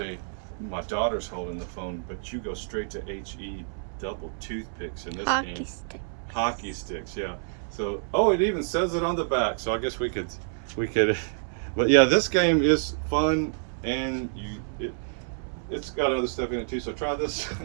my daughter's holding the phone, but you go straight to HE double toothpicks in this Hockey game. stick. Hockey sticks, yeah. So, it even says it on the back. So I guess we could, but yeah, this game is fun, and it's got other stuff in it too. So try this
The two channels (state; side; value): silent; left; 59 dB below the other